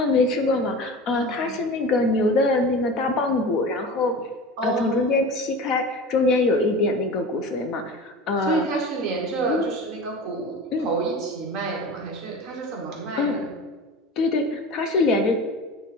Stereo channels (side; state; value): both; normal; correlation 0.33